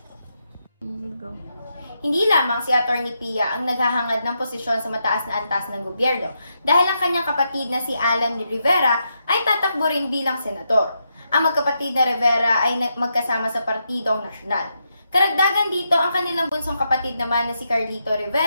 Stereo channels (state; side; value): inverted; both; correlation -0.82